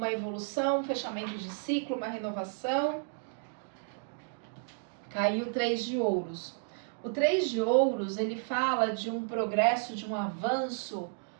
evolução, um fechamento de ciclo, uma renovação. Caiu o 3 de ouros. O 3 de ouros, ele fala de um progresso, de um avanço,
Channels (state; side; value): silent; left; digital silence